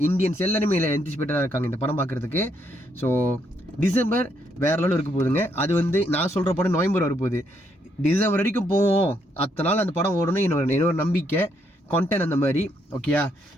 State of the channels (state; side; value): normal; both; correlation 0.74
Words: இந்தியன்ஸ் எல்லாருமே என்டிசிபேட்டடா இருக்காங்க இந்த படம் பார்க்கறதுக்கு. ஸோ டிசம்பர் வேற லெவலில் இருக்க போகுதுங்க. அது வந்து நான் சொல்ற படம் நவம்பர் வரப்போகுது. டிசம்பர் வரைக்கும் போவோம், அத்தனை நாள் அந்த படம் ஓடணும் என்னோட நம்பிக்கை, கான்டென்ட் அந்த மாதிரி. ஓகேயா,